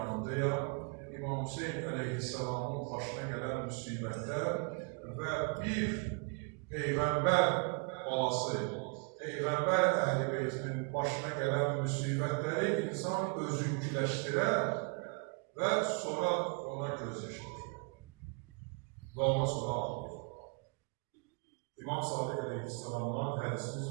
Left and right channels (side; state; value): left; quieter; 37.6 dB